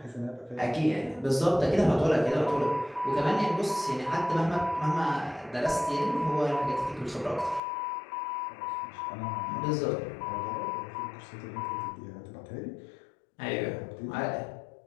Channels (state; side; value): drops out; right; at 7.6 s